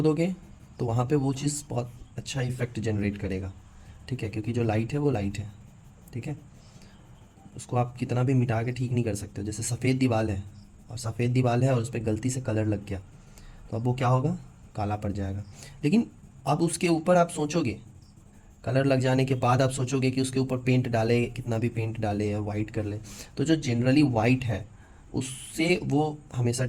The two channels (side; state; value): both; identical; correlation 1.00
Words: दोगे तो वहाँ पे वो चीज़ बहुत अच्छा इफेक्ट जनरेट करेगा, ठीक है, क्योंकि जो लाइट है वो लाइट है, ठीक है। उसको आप कितना भी मिटा के ठीक नहीं कर सकते हो। जैसे सफ़ेद दीवार है, और सफ़ेद दीवार है और उस पर गलती से कलर लग गया, तो अब वो क्या होगा, काला पड़ जाएगा। लेकिन अब उसके ऊपर आप सोचोगे, कलर लग जाने के बाद आप सोचोगे कि उसके ऊपर पेंट डाले, कितना भी पेंट डाले या वाइट कर ले, तो जो जनरली वाइट है उससे वो हमेशा